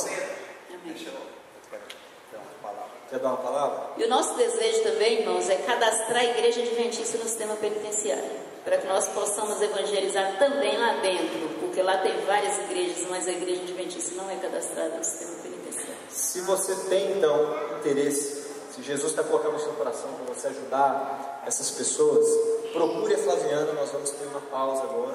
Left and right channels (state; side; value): identical; both; correlation 1.00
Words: Amém. Quer dar uma palavra? E o nosso desejo também, irmãos, é cadastrar a igreja adventista no sistema penitenciário, para que nós possamos evangelizar também lá dentro, porque lá tem várias igrejas, mas a igreja adventista não é cadastrada no sistema penitenciário. Se você tem então interesse, se Jesus está colocando no seu coração para você ajudar essas pessoas, procure a Flaviana. Nós vamos ter uma pausa